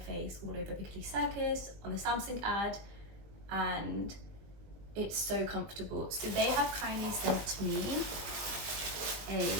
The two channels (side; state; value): left; late; 20 ms